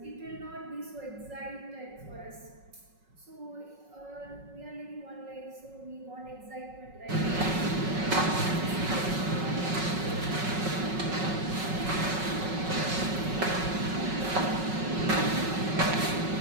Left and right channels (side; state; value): left; late; 5.4 ms